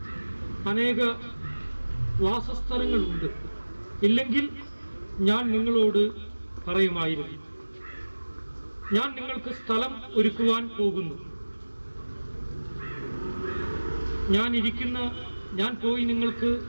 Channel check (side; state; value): both; inverted; correlation -1.00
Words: അനേക വാസസ്ഥലങ്ങളുണ്ട്, ഇല്ലെങ്കിൽ ഞാൻ നിങ്ങളോട് പറയുമായിരുന്നു. ഞാൻ നിങ്ങൾക്ക് സ്ഥലം ഒരുക്കുവാൻ പോകുന്നു. ഞാൻ പോയി നിങ്ങൾക്ക്